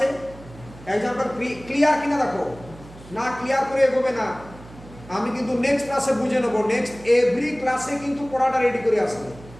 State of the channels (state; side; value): noise; right; hum, 19 dB below the sound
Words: এক্সাম্পল ক্লিয়ার কিনা দেখো, না ক্লিয়ার করে এগোবে না, আমি কিন্তু নেক্সট ক্লাসে বুঝে নেবো, নেক্সট এভরি ক্লাসে কিন্তু পড়াটা রেডি করে আসবে,